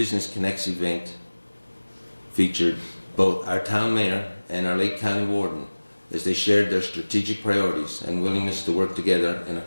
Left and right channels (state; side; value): inverted; both; correlation -1.00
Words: Connects event featured both our town mayor and our Lake County warden as they shared their strategic priorities and willingness to work together in a